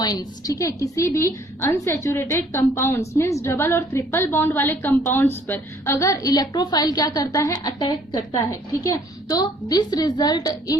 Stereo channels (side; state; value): both; normal; correlation 0.60